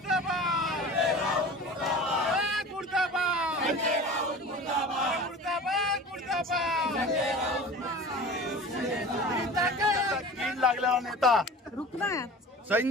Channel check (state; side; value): normal; both; correlation 0.38